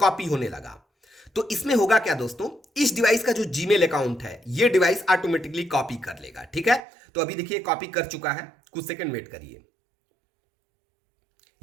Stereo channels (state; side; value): drops out; left; at 6.8 s